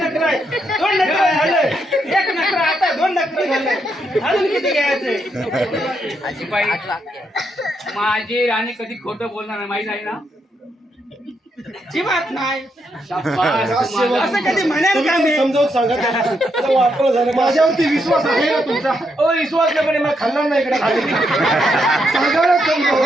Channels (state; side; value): normal; both; correlation 0.79